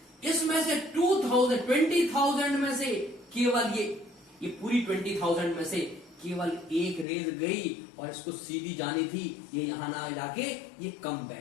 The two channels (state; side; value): drops out; right; at 7.1 s